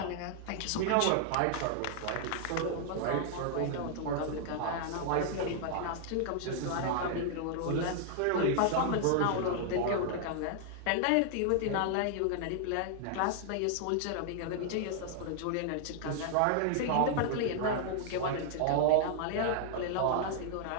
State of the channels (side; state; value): both; different; correlation -0.01